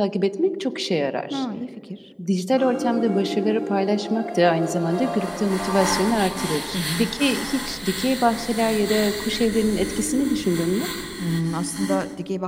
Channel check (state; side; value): identical; both; correlation 1.00